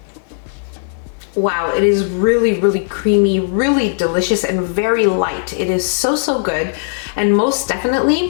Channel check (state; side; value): silent; right; 55 dB below the other